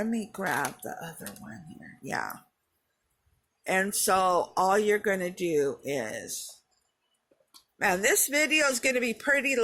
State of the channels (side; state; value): both; identical; correlation 1.00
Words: me grab the other one here. Yeah. And so all you're going to do is, man, this video is going to be pretty